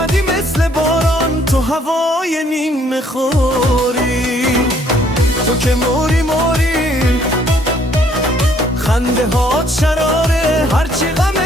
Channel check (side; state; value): both; normal; correlation 0.64